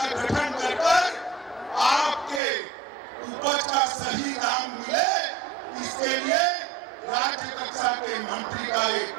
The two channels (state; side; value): drops out; left; at 2.4 s